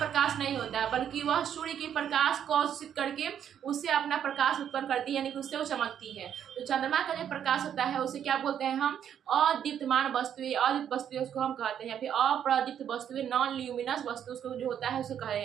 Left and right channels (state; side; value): quieter; left; 9.2 dB